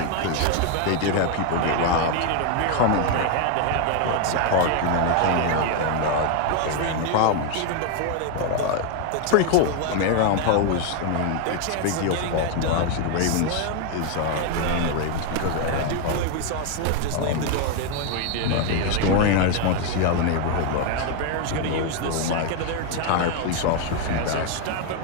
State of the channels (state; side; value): different; both; correlation 0.01